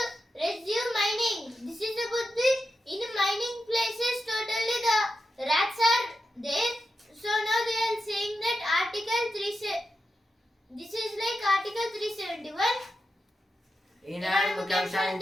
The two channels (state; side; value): normal; both; correlation 0.89